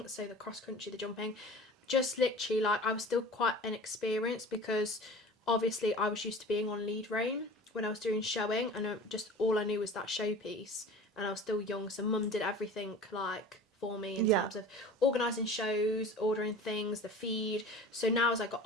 So the cross country, the jumping, just literally like I was still quite inexperienced because obviously I was used to being on lead rein when I was doing showing, and just all I knew was that showpiece, and I was still young, so mum did everything like for me in terms of organising shows, ordering things, the feed. So now as I got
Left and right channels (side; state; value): both; normal; correlation 0.40